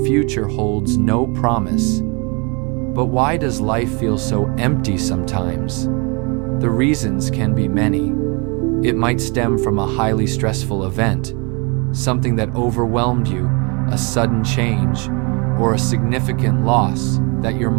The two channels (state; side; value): quieter; left; 31.2 dB